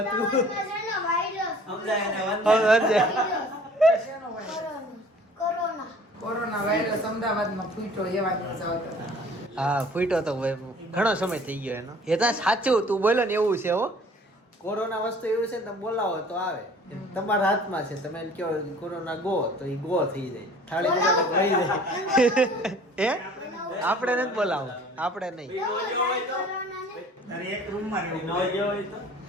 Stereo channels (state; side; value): normal; both; correlation 0.50